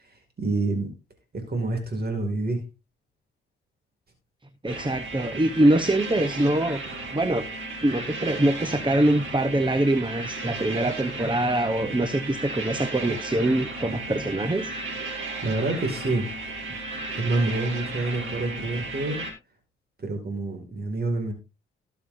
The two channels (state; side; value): normal; both; correlation 0.73